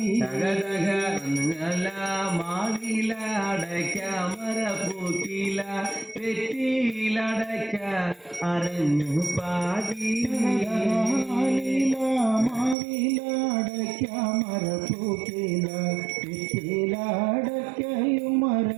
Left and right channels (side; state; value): left; drops out; at 12.8 s